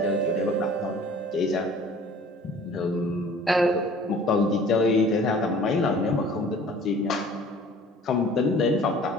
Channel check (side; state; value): both; normal; correlation 0.49